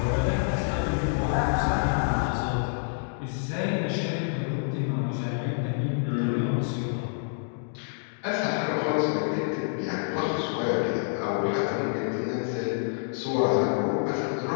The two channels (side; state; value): right; silent; digital silence